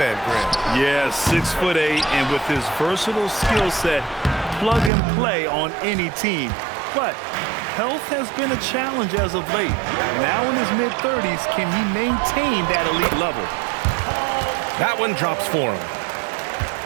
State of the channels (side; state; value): left; drops out; at 4.9 s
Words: Grant. Yeah, 6'8", and with his versatile skill set, plug and play on any team. But health has been a challenge as of late. Now in his mid-30s, can he maintain that elite level? That one drops for him.